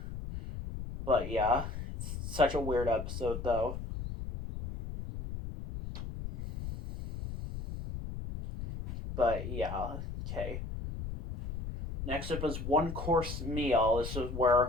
But yeah, it's such a weird episode, though. But yeah, okay. Next up is One Course Meal. This is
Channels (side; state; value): left; noise; rumble, 7 dB below the sound